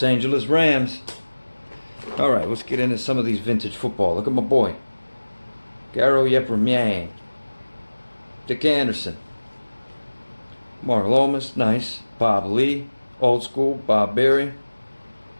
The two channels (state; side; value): inverted; both; correlation -1.00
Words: Angeles Rams. Alright, let's get into some of these vintage football. Look at my boy. Garo Yepremian. Dick Anderson. Mark Lomas, nice. Bob Lee, old school. Bob Berry.